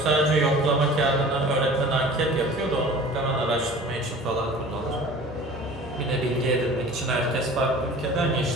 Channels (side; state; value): both; normal; correlation 0.43